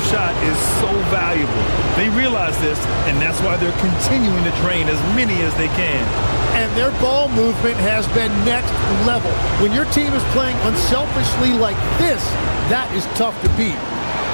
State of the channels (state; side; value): inverted; both; correlation -1.00